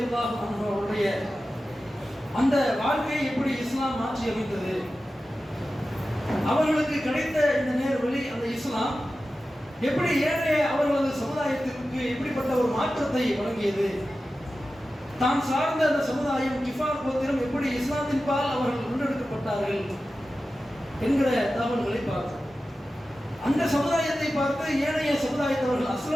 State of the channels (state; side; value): normal; both; correlation 0.94